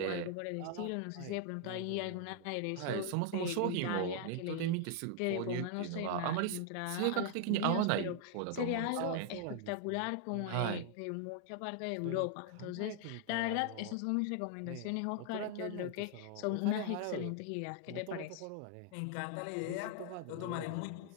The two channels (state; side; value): different; both; correlation 0.00